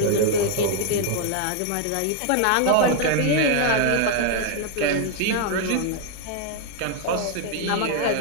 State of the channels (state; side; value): different; both; correlation 0.00